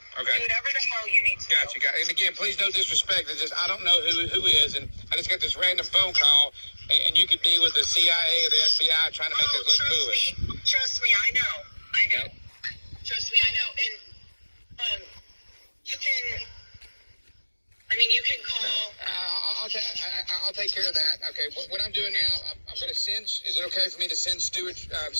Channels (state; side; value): inverted; both; correlation -1.00